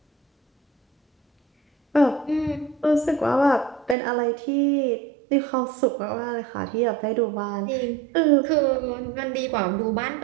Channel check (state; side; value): drops out; left; at 4.0 s